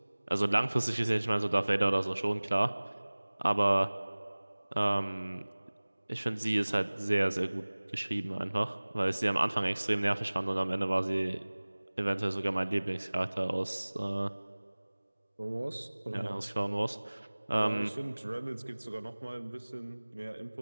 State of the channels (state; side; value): inverted; both; correlation -1.00